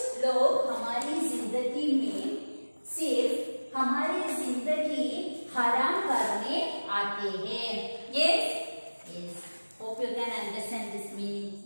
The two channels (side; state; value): both; inverted; correlation -1.00